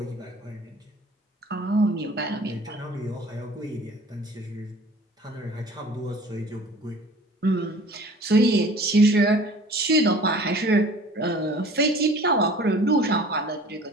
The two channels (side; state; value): both; normal; correlation 0.46